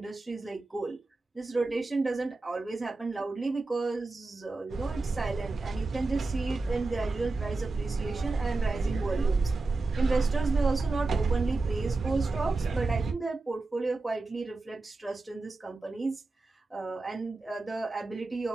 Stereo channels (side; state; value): left; quieter; 3.5 dB